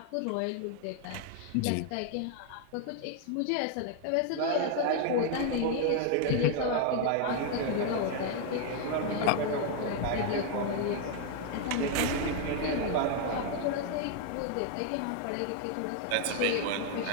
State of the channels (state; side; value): different; both; correlation 0.00